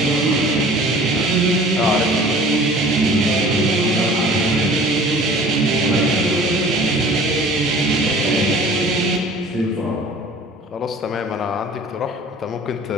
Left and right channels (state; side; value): normal; both; correlation 0.47